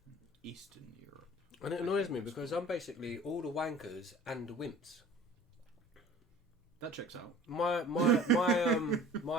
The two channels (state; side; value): normal; both; correlation 0.46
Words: Eastern Europe. And it annoys me because I'm basically all the wankers and the wimps. That checks out.